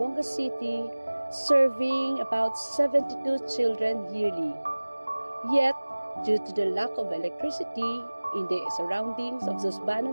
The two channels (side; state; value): both; inverted; correlation -1.00